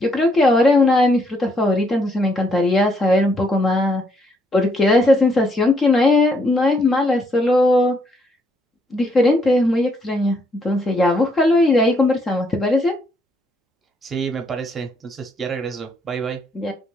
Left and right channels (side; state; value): both; normal; correlation 0.71